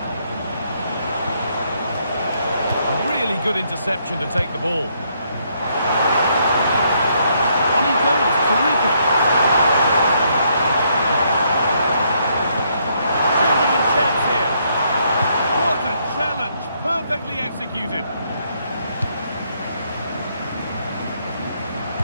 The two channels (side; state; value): both; inverted; correlation -0.72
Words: Really good interception to take the ball. On he goes, terrific. Genuine chance here. What a challenge, perfectly executed.